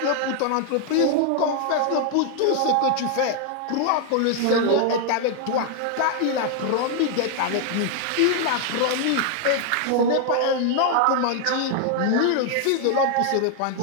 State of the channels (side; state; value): both; different; correlation 0.00